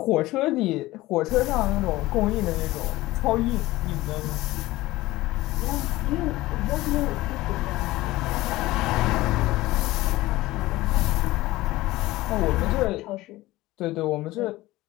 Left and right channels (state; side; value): quieter; right; 18.2 dB